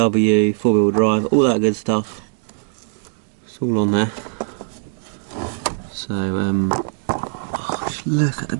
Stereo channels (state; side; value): silent; left; digital silence